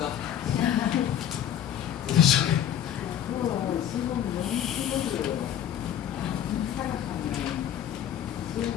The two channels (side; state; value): right; quieter; 10.2 dB